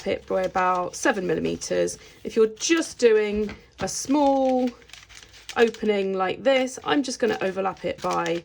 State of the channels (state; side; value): identical; both; correlation 1.00